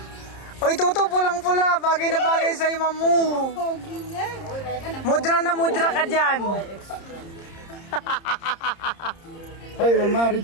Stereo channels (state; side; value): late; right; 30 ms